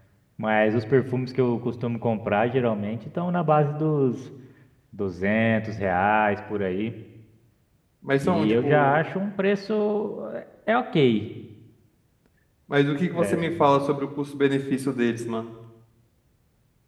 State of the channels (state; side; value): identical; both; correlation 1.00